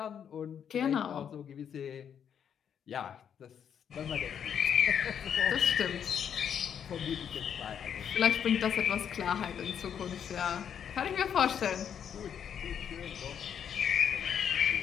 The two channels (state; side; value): quieter; right; 8.3 dB